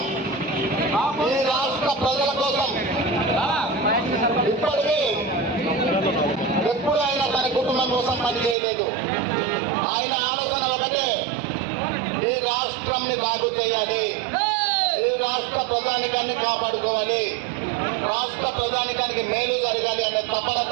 ఈ రాష్ట్ర ప్రజల కోసం ఇప్పటికీ ఎప్పుడు ఆయన తన కుటుంబం కోసం పనిచేయలేదు. ఆయన ఆలోచన ఒకటే, ఈ రాష్ట్రంని బాగు చేయాలి, ఈ రాష్ట్ర ప్రజానికాన్ని కాపాడుకోవాలి, రాష్ట్ర ప్రజానికానికి మేలు జరగాలి అనే తపన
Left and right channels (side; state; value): left; drops out; at 8.6 s